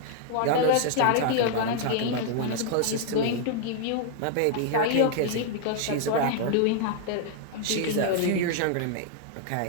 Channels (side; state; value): both; different; correlation 0.00